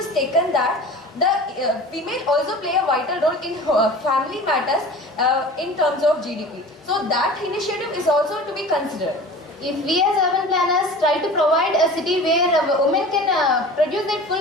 taken that the female also play a vital role in family matters in terms of GDP. So that initiative is also to be considered. If we as urban planners try to provide a city where women can produce their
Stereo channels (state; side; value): normal; both; correlation 0.39